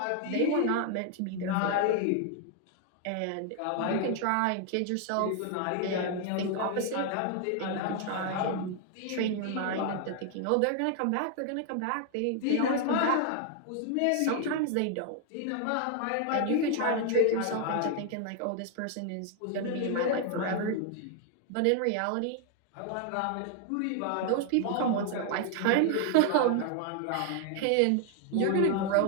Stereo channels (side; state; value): both; different; correlation 0.00